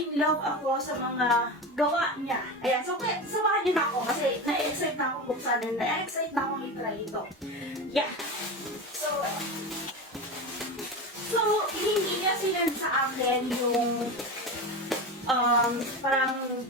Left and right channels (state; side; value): normal; both; correlation 0.24